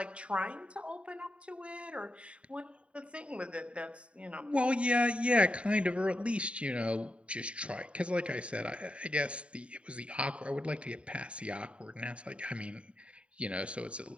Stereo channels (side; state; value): left; late; 0.061 ms